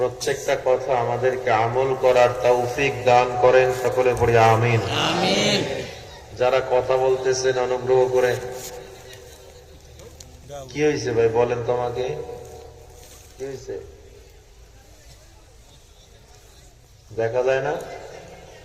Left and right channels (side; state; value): both; identical; correlation 1.00